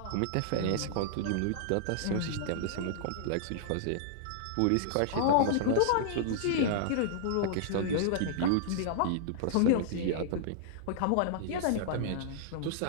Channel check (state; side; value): different; both; correlation -0.01